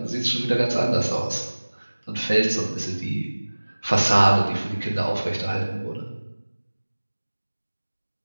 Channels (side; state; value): both; inverted; correlation -1.00